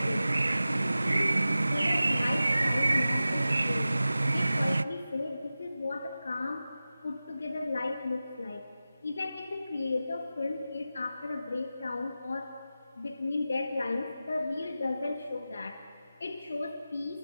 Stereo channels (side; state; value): both; inverted; correlation -0.94